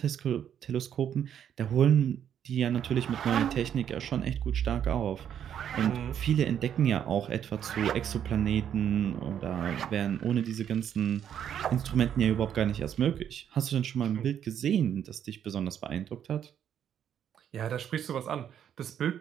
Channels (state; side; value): quieter; left; 9.3 dB